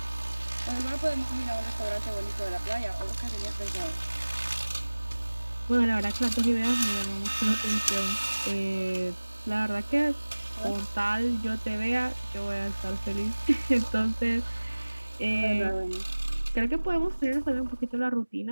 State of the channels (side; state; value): both; inverted; correlation -1.00